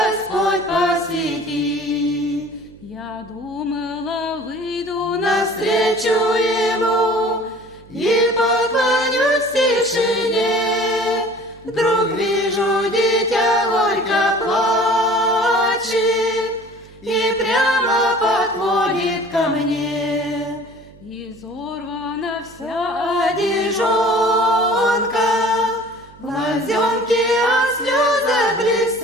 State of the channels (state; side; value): noise; right; hum, 23 dB below the sound